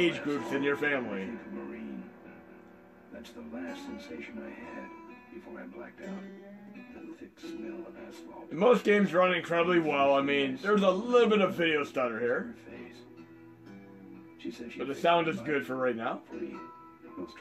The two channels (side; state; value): both; identical; correlation 1.00